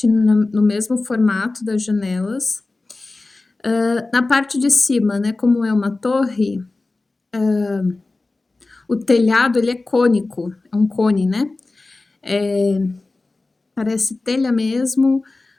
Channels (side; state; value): right; quieter; 3.3 dB